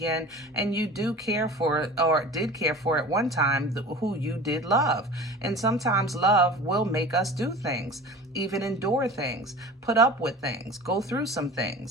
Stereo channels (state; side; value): normal; both; correlation 0.38